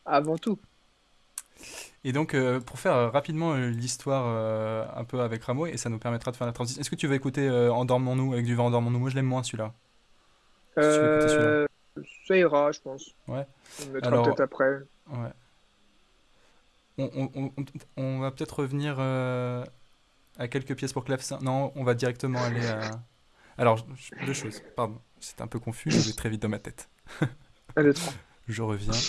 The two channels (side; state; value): both; identical; correlation 1.00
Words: avant tout. Et donc, pour faire rapidement l'histoire un peu avec Rameau, et ça nous permettra de faire la transition. Est-ce que tu veux écouter Endormons-nous avec du vent Endormons-nous? Moi, je l'aime moins celui-là. Si tu veux écouter celui-là. Ça ira, je pense. Ouais. On le mettra Alors, peut-être après. ouais. On va peut-être revenir à quelques pièces pour clavecin. Non, on va directement aller à. Alors, deux choses. Pardon, c'est un peu confus, je vais très vite dans ma tête. 1, 2, 3. Je reviens.